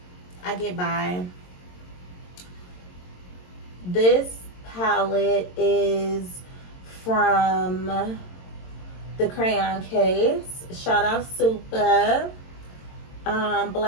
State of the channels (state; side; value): late; right; 22 ms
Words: I get by. This palette is from the Crayon Case. Shout out Super.